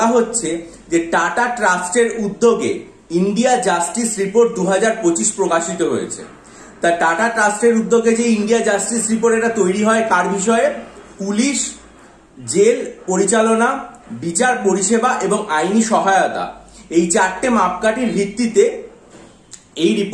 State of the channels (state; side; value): identical; both; correlation 1.00